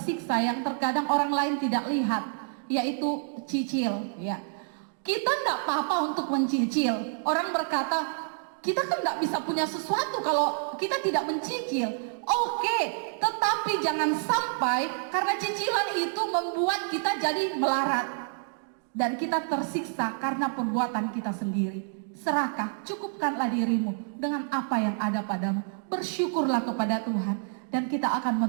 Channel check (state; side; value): silent; left; digital silence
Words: yang terkadang orang lain tidak lihat, yaitu cicil ya. Kita tidak apa-apa untuk mencicil. Orang berkata, kita kan tidak bisa punya sesuatu kalau kita tidak mencicil. Oke, tetapi jangan sampai karena cicilan itu membuat kita jadi melarat dan kita tersiksa karena perbuatan kita sendiri. Serakah, cukupkanlah dirimu dengan apa yang ada padamu. Bersyukurlah kepada Tuhan dan kita akan